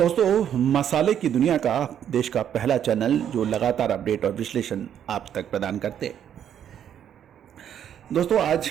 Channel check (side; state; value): left; quieter; 9.5 dB